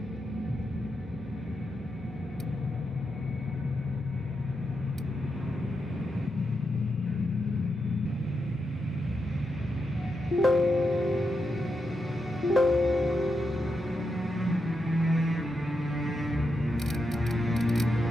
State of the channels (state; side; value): normal; both; correlation 0.85